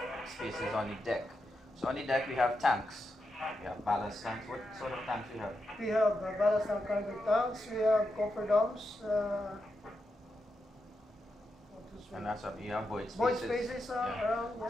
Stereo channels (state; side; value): normal; both; correlation 0.86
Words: spaces on the deck. So on the deck we have tanks, we have ballast tanks. What sort of tanks we have? We have ballast and cargo tanks, we have copper domes, And that's what you have void spaces. void spaces around. Yeah.